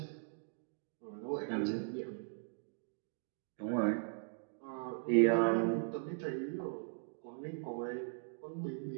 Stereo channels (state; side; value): silent; left; digital silence